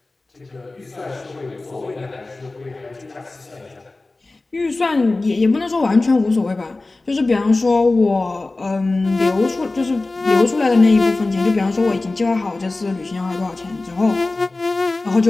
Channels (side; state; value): right; quieter; 3.2 dB